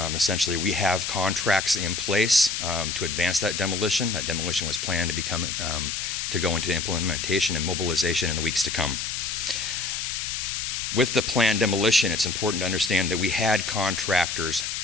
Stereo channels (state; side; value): noise; left; hiss, 3 dB below the sound